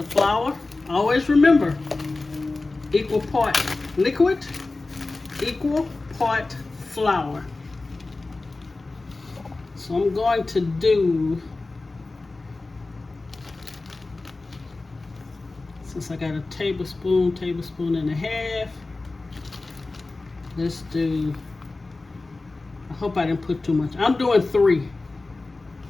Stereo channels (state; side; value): quieter; right; 3.3 dB